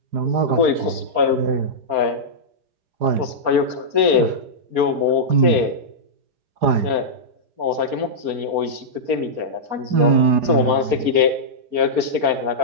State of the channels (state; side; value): late; left; 4.3 ms